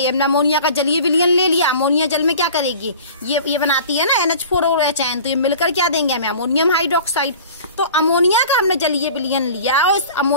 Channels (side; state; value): both; inverted; correlation -0.42